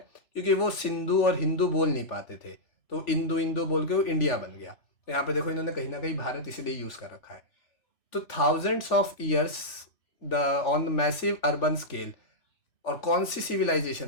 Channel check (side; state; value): right; late; 3.5 ms